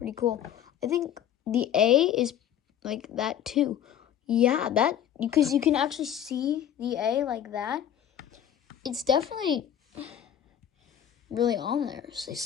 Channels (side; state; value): right; quieter; 10.0 dB